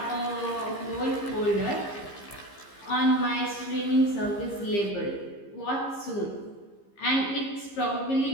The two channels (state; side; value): late; right; 15 ms